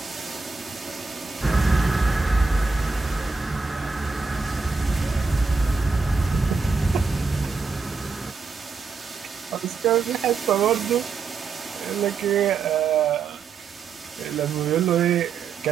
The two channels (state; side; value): quieter; left; 4.7 dB